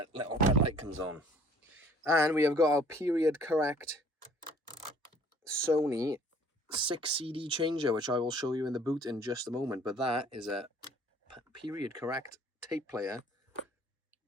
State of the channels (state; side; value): normal; both; correlation 0.54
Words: light comes on. And we have got our period correct Sony 6 CD changer, which I will show you in the boot in just a moment. But that is a period correct tape player